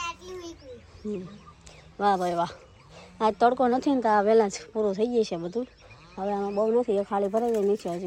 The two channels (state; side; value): identical; both; correlation 1.00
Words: આટલી વીકવી. વાહ ભાઈ વાહ. આજ તડકો નથી ને તો આ વહેલા જ પૂરું થઈ જાય છે બધું. હવે આમાં બહુ નથી, એ ખાલી ભરાઈ જાય નીચે